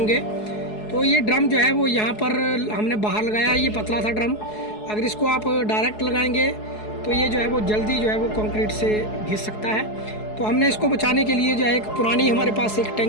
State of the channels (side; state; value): right; late; 4.7 ms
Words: तो ये ड्रम जो है वो यहाँ पर हमने बाहर लगाया है। ये पतला था ड्रम, अगर इसको आप डायरेक्ट लगाएंगे तो ये जो है वो जल्दी जो है वो कंक्रीट से घिस सकता है। तो हमने इसको बचाने के लिए जो है एक पुरानी हमारे पास एक